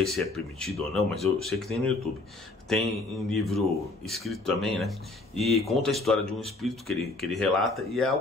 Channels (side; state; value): right; quieter; 3.1 dB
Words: se é permitido ou não, mas eu sei que tem no YouTube. Tem em livro escrito também, né? E conta a história de um espírito que ele relata, e é